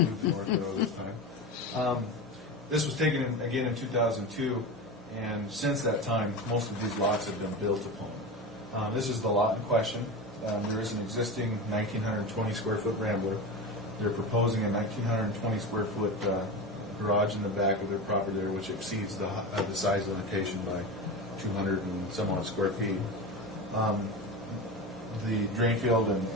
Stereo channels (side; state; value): both; normal; correlation 0.25